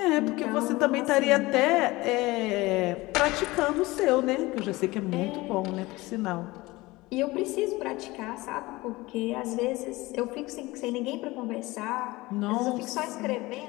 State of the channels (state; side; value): quieter; right; 20.7 dB